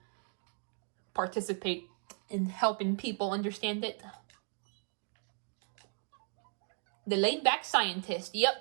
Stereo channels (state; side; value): silent; left; 54 dB below the other